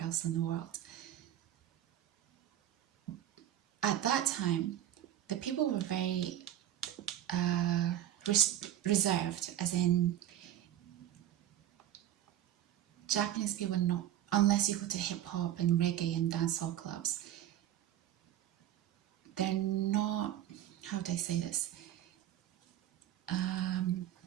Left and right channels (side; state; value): left; quieter; 12.0 dB